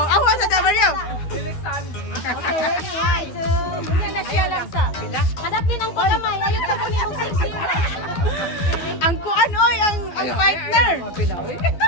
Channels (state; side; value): late; right; 12 ms